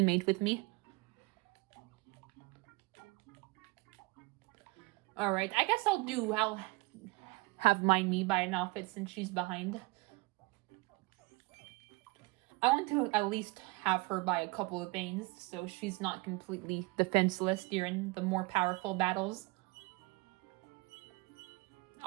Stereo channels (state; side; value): quieter; left; 24.5 dB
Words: with me. Alright, I guess I'll have me buy an outfit since she's behind. I want to at least have her buy a couple of things so she's not completely defenseless during the more powerful battles.